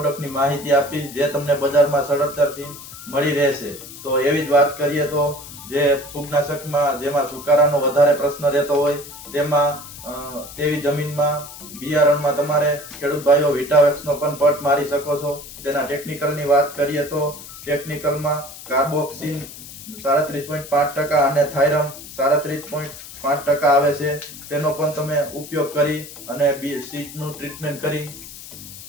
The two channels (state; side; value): noise; left; hiss, 14 dB below the sound